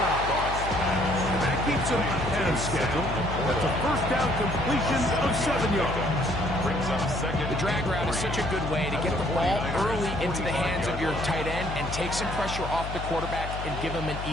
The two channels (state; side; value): noise; left; hum, 7 dB below the sound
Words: And that keeps him ahead of schedule. That's a first down completion of 7 yards. Brings up 2nd. The drag route is such a good way to get the ball early into the hands of your tight end and take some pressure off the quarterback and give him an